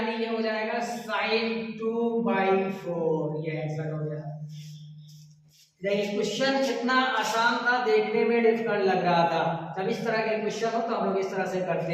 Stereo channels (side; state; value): both; identical; correlation 1.00